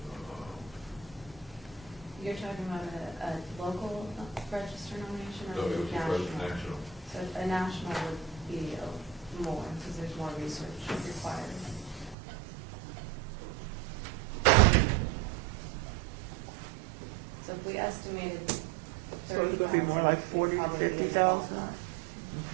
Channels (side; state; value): left; drops out; at 12.2 s